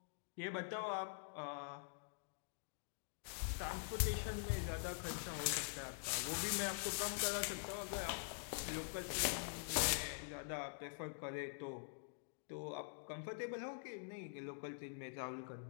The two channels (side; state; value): right; silent; digital silence